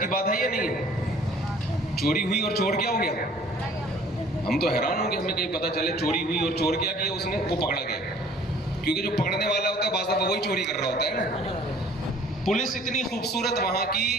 بات ہے یا نہیں ہے؟ چوری ہوئی اور چور کیا ہو گیا؟ ہم تو حیران ہوں گے، ہمیں کہیں پتہ چلے چوری ہوئی اور چور کیا کیا اس نے، وہ پکڑا گیا. کیونکہ جو پکڑنے والا ہوتا ہے بعض دفعہ وہی چوری کر رہا ہوتا ہے نا. پولیس اتنی خوبصورت وہاں کی،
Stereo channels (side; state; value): both; normal; correlation 0.53